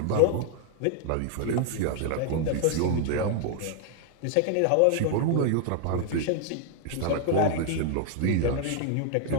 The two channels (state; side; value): different; both; correlation 0.00